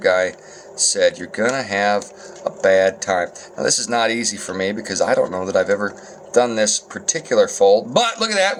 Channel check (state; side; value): identical; both; correlation 1.00